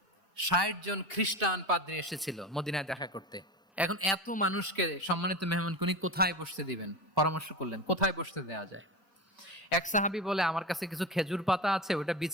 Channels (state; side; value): normal; both; correlation 0.25